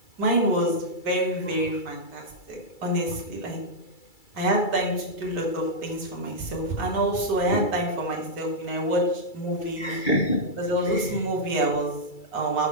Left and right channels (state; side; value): late; right; 2.3 ms